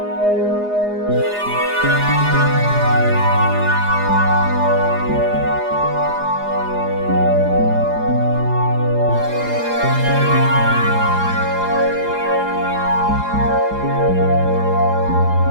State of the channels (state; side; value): late; left; 4.8 ms